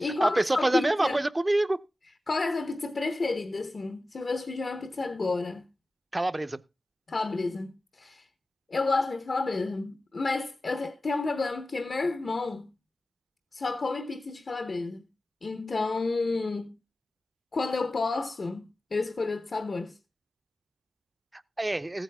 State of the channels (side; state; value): both; normal; correlation 0.94